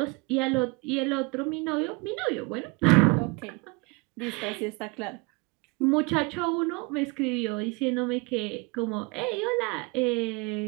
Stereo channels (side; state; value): left; quieter; 27.9 dB